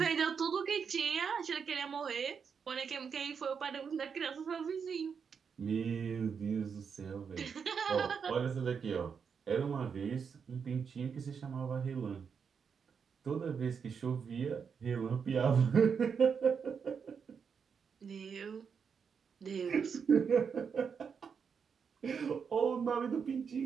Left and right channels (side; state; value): left; quieter; 6.4 dB